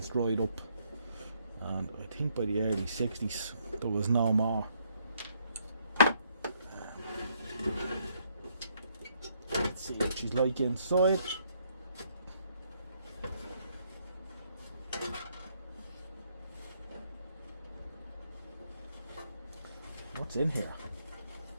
dried up, and I think by the early 60s there was no more. Let's see what she's like inside. What's in here?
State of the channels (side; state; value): both; inverted; correlation -0.71